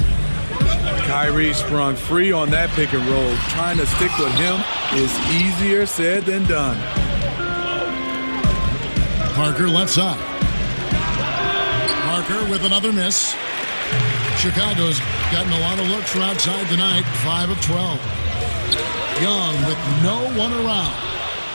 Kyrie sprung free on that pick and roll. Trying to stick with him is easier said than done. Parker left side. Parker with another miss. Chicago's gotten a lot of looks from outside tonight. 5 of 12. Young with no one around.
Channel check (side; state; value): both; inverted; correlation -1.00